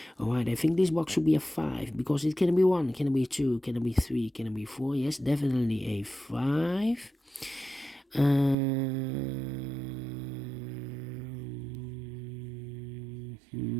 Alright, I think this box should be a 5 because it can be 1, can be 2, can be 3, can be 4. Yes, definitely a 5.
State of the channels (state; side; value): drops out; left; at 8.6 s